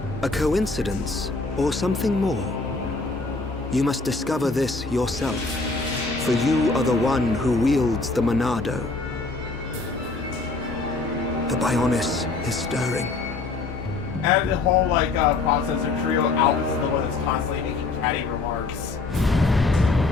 A coincidence, or something more? You must discover this yourself, for you are the one who wields the Monado. The Bionis is stirring. And the whole process of trio, Albus is the one that's constantly making catty remarks.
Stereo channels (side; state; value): right; quieter; 3.7 dB